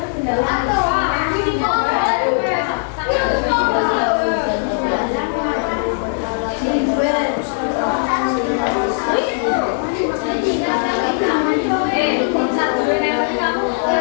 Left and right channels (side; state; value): right; silent; digital silence